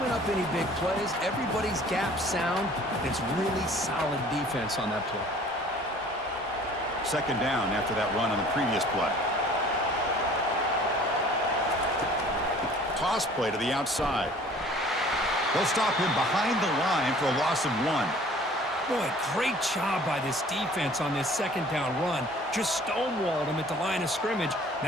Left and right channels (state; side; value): normal; both; correlation 0.51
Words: up any big plays. Everybody's gap sound. It's really solid defense on that play. Second down after that run on the previous play. Toss play to the outside. They'll stop him behind the line for a loss of 1. Boy, great job by this defense on this second down run. Just stonewalled him at the line of scrimmage.